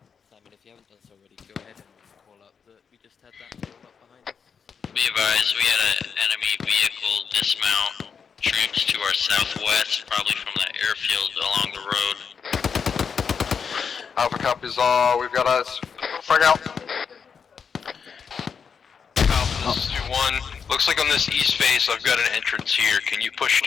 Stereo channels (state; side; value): quieter; right; 6.4 dB